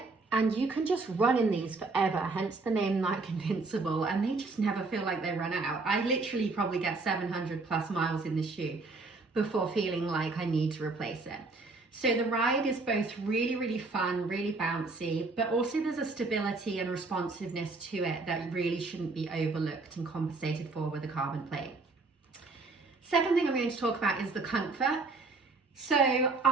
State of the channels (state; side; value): quieter; left; 3.7 dB